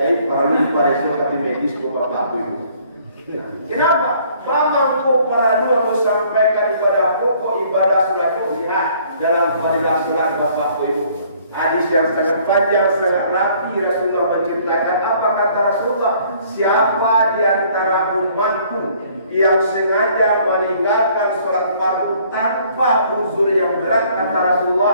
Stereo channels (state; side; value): inverted; both; correlation -0.60